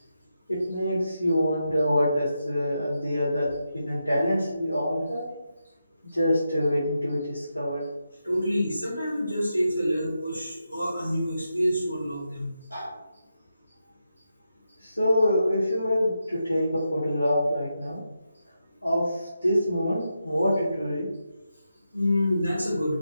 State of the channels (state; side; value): inverted; both; correlation -0.86